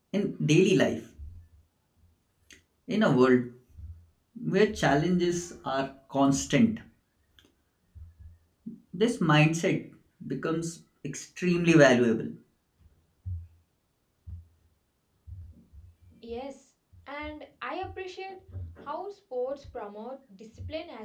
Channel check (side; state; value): both; identical; correlation 1.00